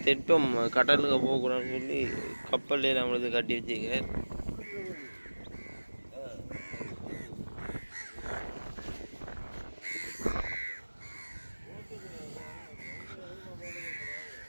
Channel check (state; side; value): inverted; both; correlation -1.00